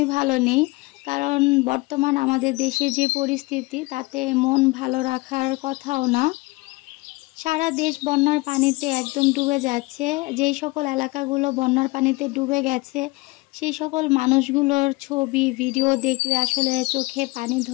ভালো নেই। কারণ বর্তমান আমাদের দেশের যে পরিস্থিতি তাতে মন ভালো রাখার কথাও না। সারা দেশ বন্যার পানিতে একদম ডুবে যাচ্ছে। যেই সকল এলাকাগুলো বন্যার পানিতে ডুবে গেছে সেই সকল মানুষগুলোর ছবি ভিডিও দেখলে আসলে চোখে পানি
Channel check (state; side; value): quieter; right; 23.5 dB